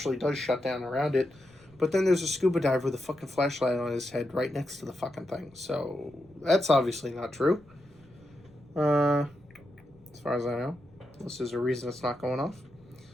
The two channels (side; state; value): left; noise; rumble, 27 dB below the sound